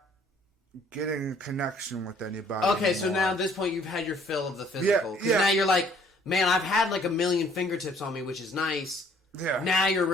getting a connection with anybody. Okay, so anymore. now at this point you've had your fill of the physical. Because Yeah. now you're like, man, I've had like a million fingertips on me, which is nice. Yeah. Now you're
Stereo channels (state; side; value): normal; both; correlation 0.59